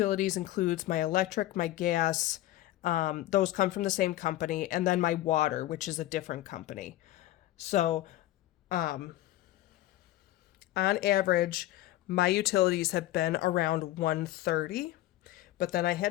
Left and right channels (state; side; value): quieter; right; 15.1 dB